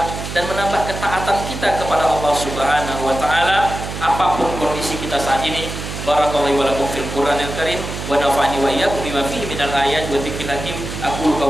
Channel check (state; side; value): noise; right; hum, 7 dB below the sound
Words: dan menambah ketaatan kita kepada Allah Subhanahu wa taala apapun kondisi kita saat ini. Barakallahu wa lakum fil Qur'anil Karim wa nafa'ani wa iyyakum bima fihi minal ayati wa dzikril hakim. Aqulu